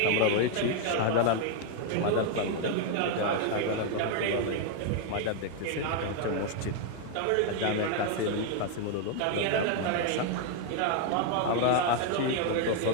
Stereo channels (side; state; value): both; different; correlation 0.01